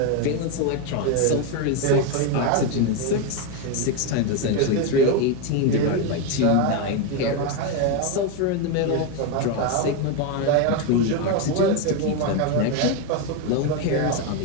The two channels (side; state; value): both; different; correlation 0.02